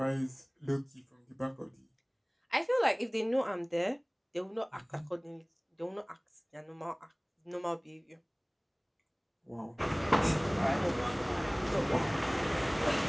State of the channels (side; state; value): both; identical; correlation 1.00